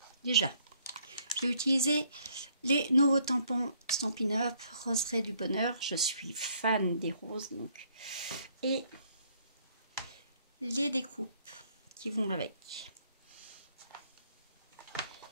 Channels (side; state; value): both; inverted; correlation -0.66